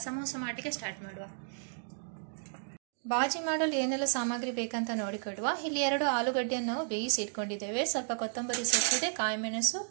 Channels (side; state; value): left; silent; digital silence